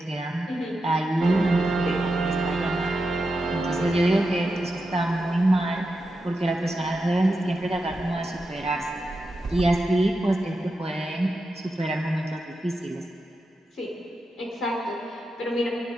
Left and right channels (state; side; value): normal; both; correlation 0.88